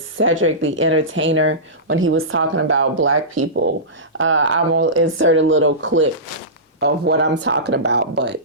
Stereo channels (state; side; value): normal; both; correlation -0.19